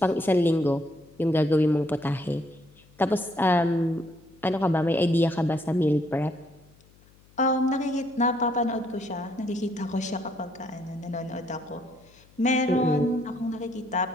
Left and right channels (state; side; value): noise; left; hum, 28 dB below the sound